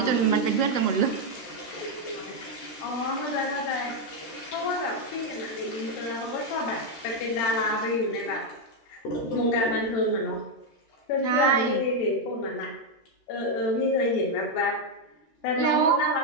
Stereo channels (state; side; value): late; right; 13 ms